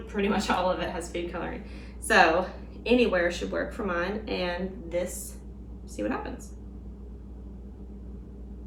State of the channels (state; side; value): identical; both; correlation 1.00